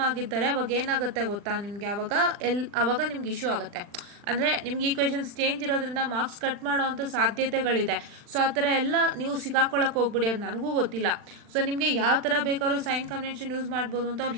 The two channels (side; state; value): left; late; 40 ms